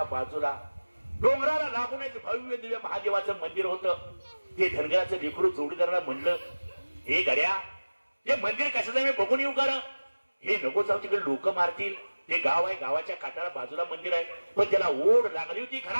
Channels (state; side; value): inverted; both; correlation -1.00